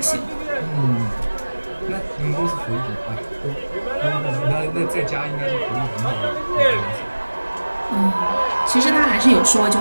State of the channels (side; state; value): both; inverted; correlation -1.00